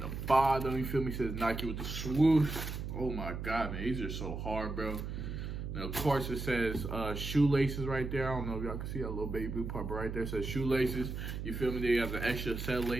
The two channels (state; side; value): noise; right; hum, 5 dB below the sound